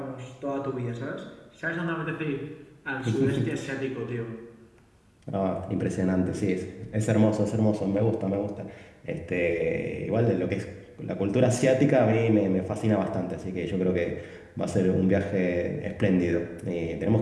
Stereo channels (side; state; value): both; identical; correlation 1.00